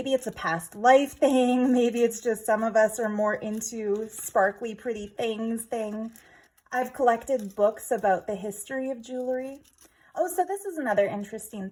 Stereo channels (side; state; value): both; identical; correlation 1.00